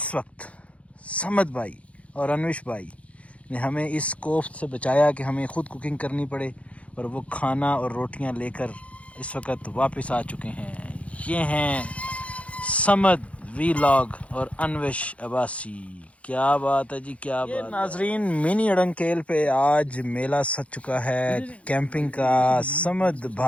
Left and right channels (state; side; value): late; right; 0.064 ms